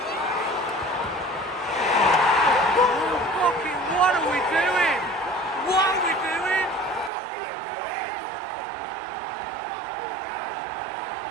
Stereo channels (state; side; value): drops out; left; at 7.1 s